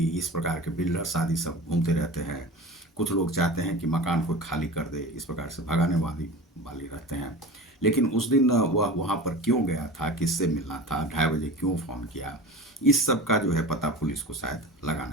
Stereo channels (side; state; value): both; normal; correlation 0.34